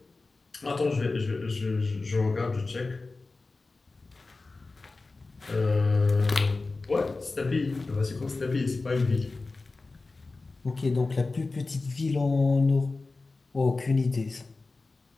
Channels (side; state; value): right; quieter; 3.6 dB